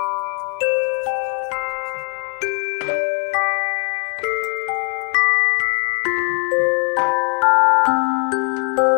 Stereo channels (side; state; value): right; quieter; 35.3 dB